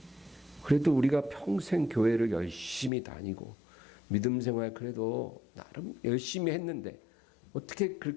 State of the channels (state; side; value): drops out; right; at 2.9 s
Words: 그래도 우리가 평생 교회를 열심히 다니고 믿음 생활 그래도 나름 열심히 했는데 어떻게